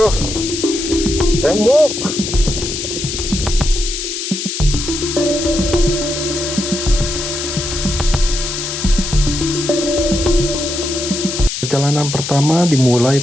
tembok. Perjalanan pertama dimulai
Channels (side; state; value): left; noise; hiss, 5 dB below the sound